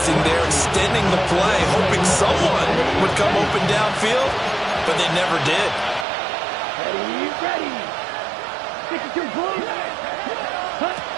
there, extending the play, hoping someone would come open downfield, but they never did. Ready. Stick it to blue.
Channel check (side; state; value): left; drops out; at 6.1 s